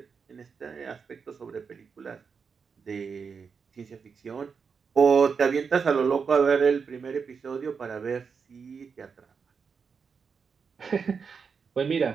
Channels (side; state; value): left; quieter; 5.8 dB